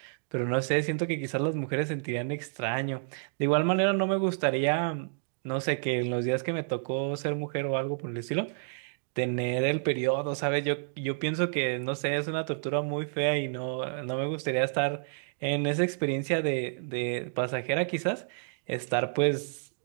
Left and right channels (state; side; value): silent; left; digital silence